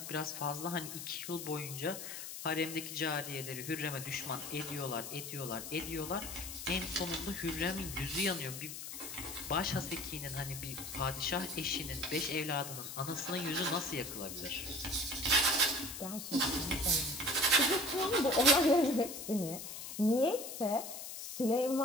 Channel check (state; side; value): noise; left; hiss, 8 dB below the sound